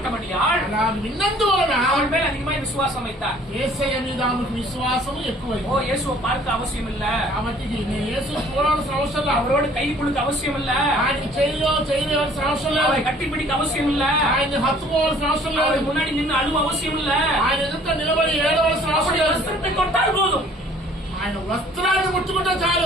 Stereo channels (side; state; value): both; normal; correlation 0.55